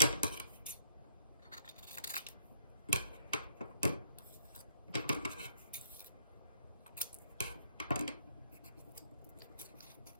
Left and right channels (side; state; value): both; inverted; correlation -0.65